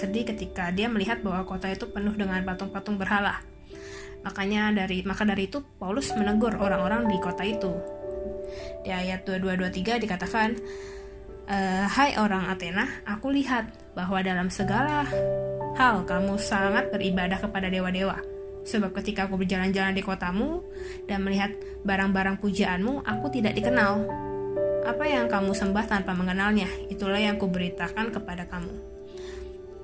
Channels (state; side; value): identical; both; correlation 1.00